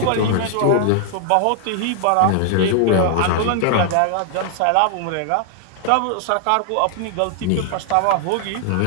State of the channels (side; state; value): both; different; correlation 0.00